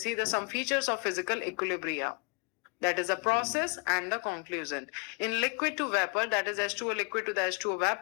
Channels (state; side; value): quieter; right; 32.7 dB